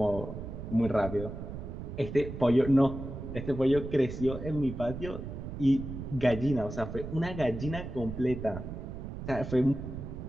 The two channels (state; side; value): noise; right; rumble, 8 dB below the sound